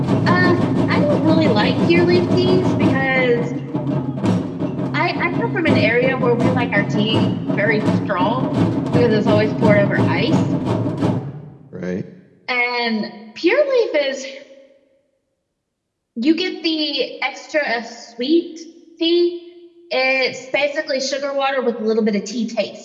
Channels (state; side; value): identical; both; correlation 1.00